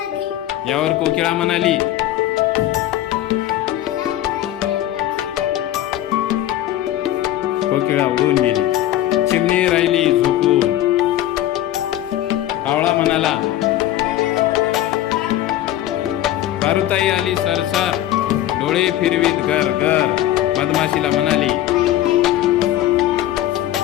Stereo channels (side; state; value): right; quieter; 13.3 dB